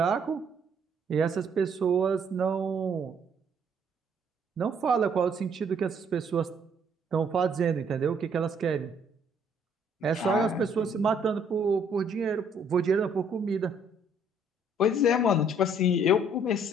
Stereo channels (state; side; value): normal; both; correlation 0.64